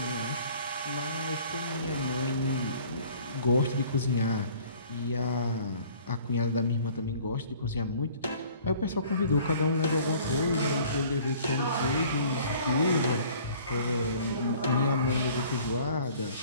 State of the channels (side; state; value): both; inverted; correlation -0.52